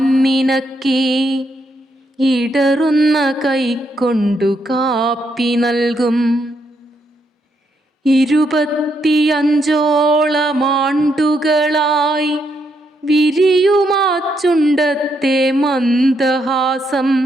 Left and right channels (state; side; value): normal; both; correlation 0.77